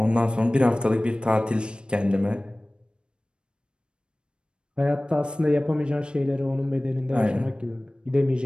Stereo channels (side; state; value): left; late; 0.054 ms